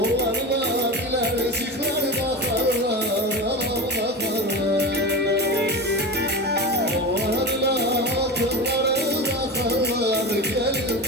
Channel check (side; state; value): both; normal; correlation 0.25